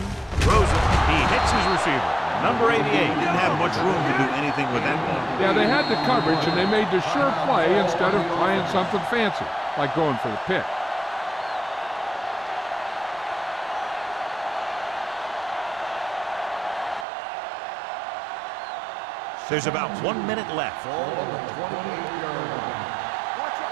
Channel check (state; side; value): drops out; left; at 17.1 s